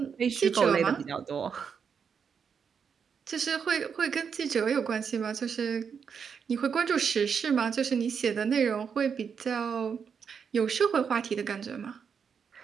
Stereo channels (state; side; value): quieter; left; 6.6 dB